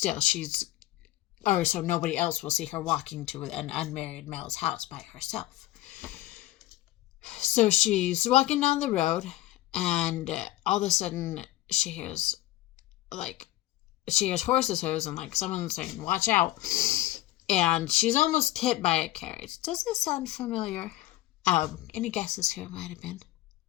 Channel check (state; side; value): quieter; right; 16.3 dB